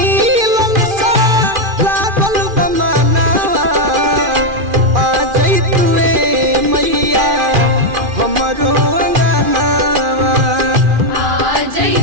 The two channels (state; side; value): late; left; 2.4 ms